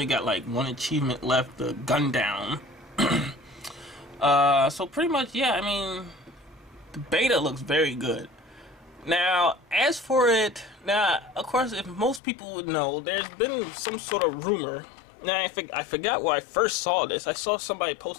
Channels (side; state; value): right; drops out; at 12.2 s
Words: got like one achievement left, the gun down. So pretty much, yeah, I mean, the beta looks very good. Now, as for it, of course, if most people would know, there's been some sort of rumor. Now, I forgot where I first saw this. I saw somebody